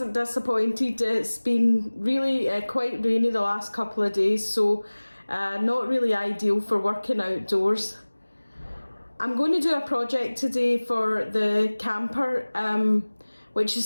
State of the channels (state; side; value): inverted; both; correlation -1.00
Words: disappointed. It's been really quite rainy the last couple of days, so not really ideal for working outdoors. I'm going to do a project today for the camper, which